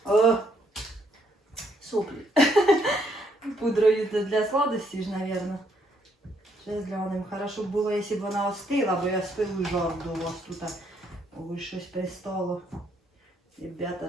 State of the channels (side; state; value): both; normal; correlation 0.71